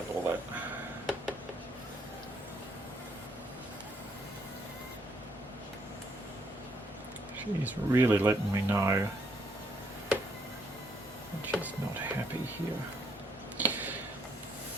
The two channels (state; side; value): normal; both; correlation 0.70